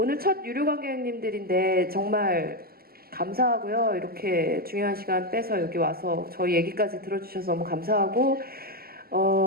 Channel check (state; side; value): late; left; 0.44 ms